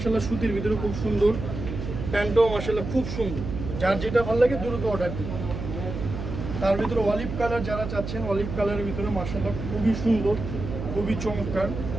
সুতির ভিতরে খুব সুন্দর, প্যান্টটাও মার্শাল্লাহ খুব সুন্দর। যার যেটা ভালো লাগে দ্রুত অর্ডার দিন। তার ভিতরে অলিভ কালার যারা চাচ্ছেন, অলিভ কালারের ভিতরে মার্শাল্লাহ খুবই সুন্দর, খুবই চমৎকার,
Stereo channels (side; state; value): right; noise; hum, 6 dB below the sound